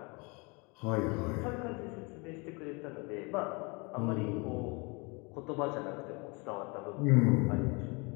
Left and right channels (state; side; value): quieter; right; 29.5 dB